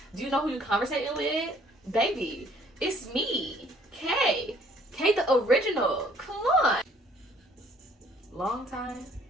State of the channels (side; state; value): both; normal; correlation 0.60